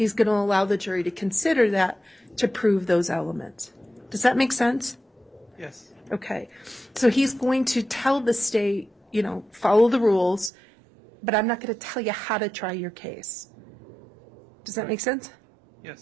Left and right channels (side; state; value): left; drops out; at 10.5 s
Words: going to allow the jury to consider that to prove those elements. Does that make sense? Yes. Okay. So he's going to tell the state, follow the rules, but I'm not going to tell you how to try your case. Does that make sense?